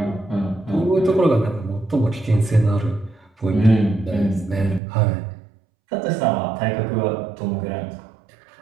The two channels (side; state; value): left; drops out; at 4.8 s